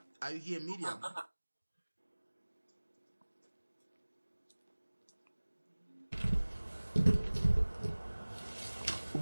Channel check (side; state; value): both; inverted; correlation -1.00